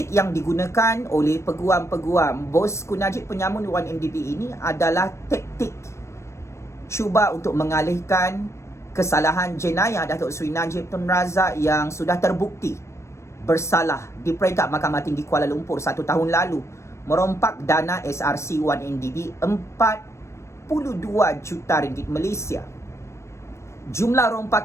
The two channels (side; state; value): right; late; 0.13 ms